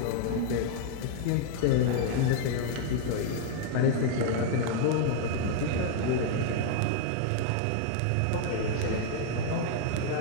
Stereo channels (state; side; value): different; both; correlation 0.00